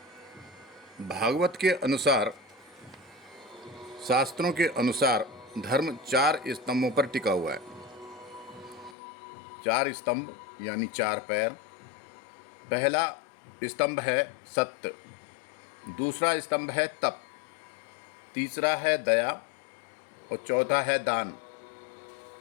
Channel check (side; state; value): right; drops out; at 9.0 s